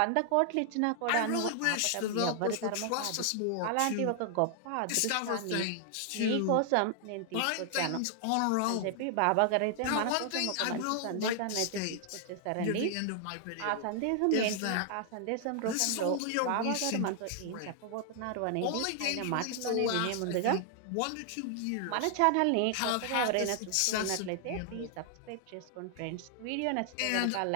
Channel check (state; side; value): different; both; correlation 0.00